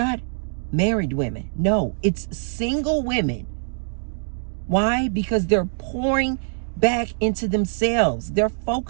married women. No, it's single women. Why? Because they're pouring back into themselves. They're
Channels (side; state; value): left; silent; digital silence